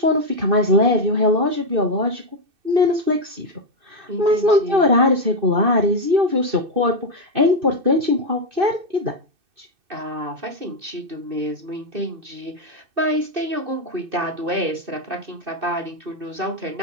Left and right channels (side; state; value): left; late; 2.6 ms